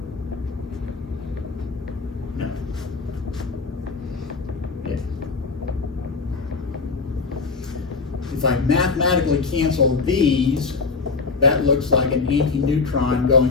No. Yeah. If I mathematically cancel these, that looks like an anti-neutron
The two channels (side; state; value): right; quieter; 4.5 dB